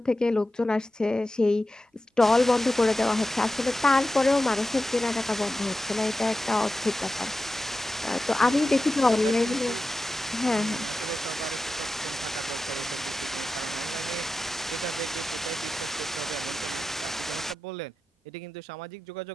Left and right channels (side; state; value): both; normal; correlation 0.93